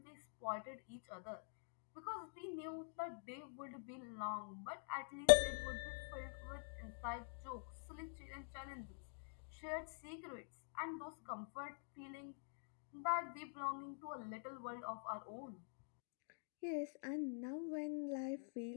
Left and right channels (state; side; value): silent; right; digital silence